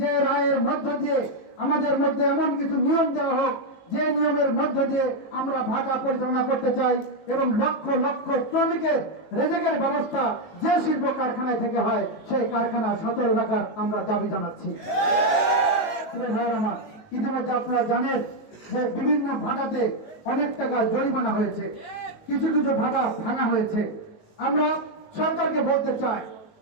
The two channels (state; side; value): late; right; 19 ms